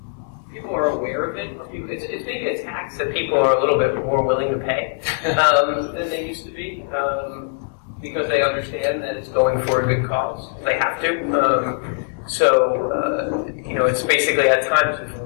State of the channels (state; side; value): silent; right; 62 dB below the other